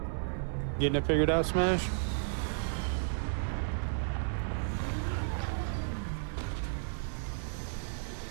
Getting it figured out, Smash?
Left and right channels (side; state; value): left; silent; digital silence